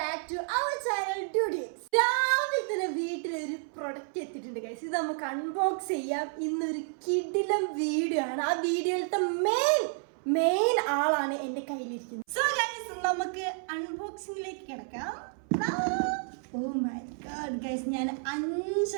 വീട്ടിലൊരു പ്രൊഡക്റ്റ് എത്തിയിട്ടുണ്ട് ഗൈസ്. ഇത് നമുക്ക് അൺബോക്സ് ചെയ്യാം. ഇന്നൊരു കിടിലം വീഡിയോ ആണ്. ആ വീഡിയോയിലത്തെ മെയിൻ ആളാണ് എന്റെ കയ്യിലിരിക്കുന്നത്. സോ ഗൈസ് നമുക്ക് അൺബോക്സിംഗിലേക്ക് കിടക്കാം. ഓ മൈ ഗോഡ് ഗൈസ്, ഞാൻ 5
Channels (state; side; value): silent; left; 57 dB below the other